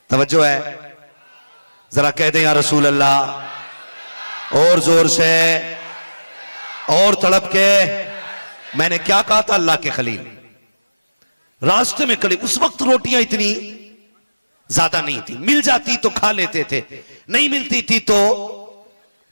तवज्जो है, जरा कह दें या रसूल अल्लाह, और जोर से और तड़प के। मैंने क्या कहा था, अल्लाह के खलील रास्ते में खड़े, उस वक्त रोटियां इतनी ज्यादा नहीं थी, मिल जाती तो खा लेते थे, नहीं मिलती थी तो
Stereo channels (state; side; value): inverted; both; correlation -1.00